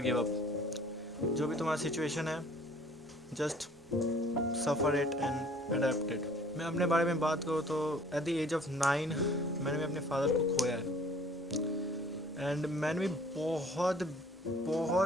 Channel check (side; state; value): both; normal; correlation 0.54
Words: give up. जो भी तुम्हारा सिचुएशन है, just suffer it and adapt it. मैं अपने बारे में बात करूँ तो एट द एज ऑफ 9 मैंने भी अपने फादर को खोया है, एंड मैंने भी बहुत